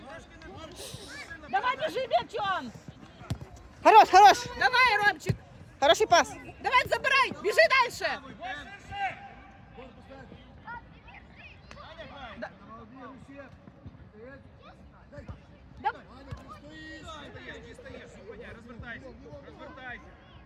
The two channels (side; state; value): both; identical; correlation 1.00